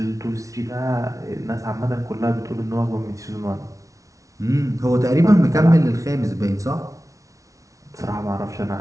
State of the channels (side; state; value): left; late; 0.16 ms